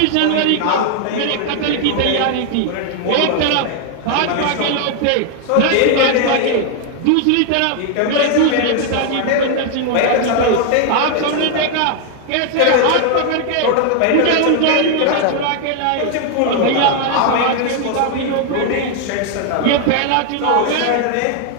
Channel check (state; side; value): different; both; correlation 0.00